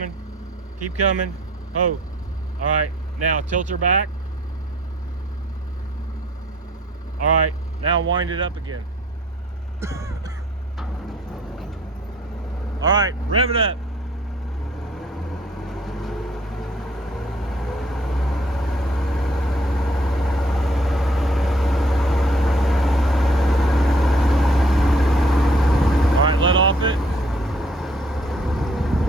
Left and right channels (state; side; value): normal; both; correlation 0.60